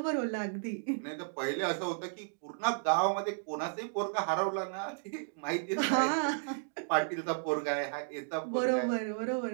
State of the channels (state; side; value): silent; left; digital silence